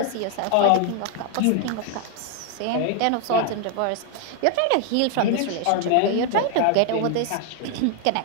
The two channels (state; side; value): different; both; correlation 0.01